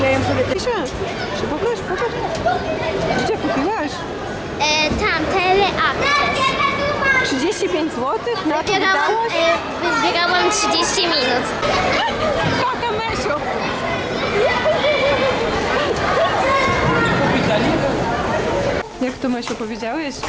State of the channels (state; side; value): identical; both; correlation 1.00